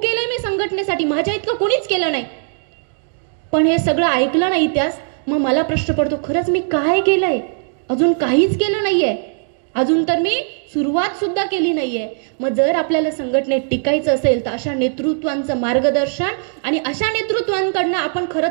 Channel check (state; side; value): silent; left; digital silence